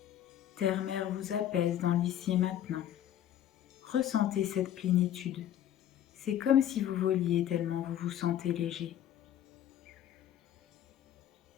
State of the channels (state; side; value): quieter; right; 11.0 dB